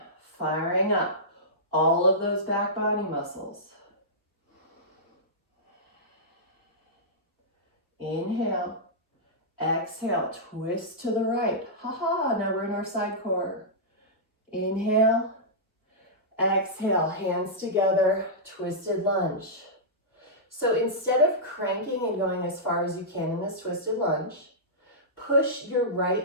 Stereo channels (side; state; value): both; normal; correlation -0.14